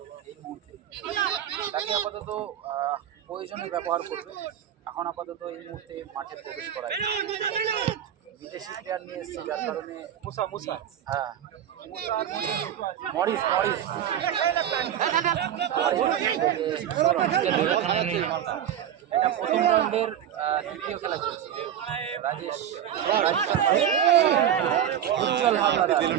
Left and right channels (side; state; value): left; quieter; 10.1 dB